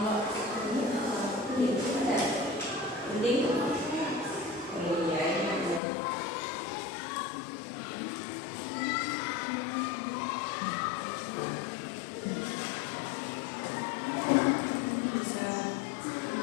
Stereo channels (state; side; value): drops out; right; at 5.8 s